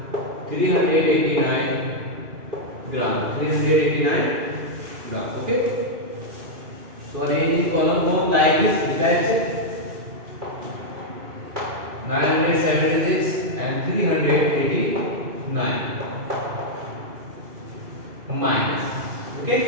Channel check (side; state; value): left; late; 2.5 ms